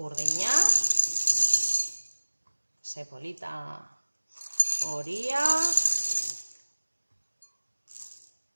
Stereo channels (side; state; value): both; inverted; correlation -1.00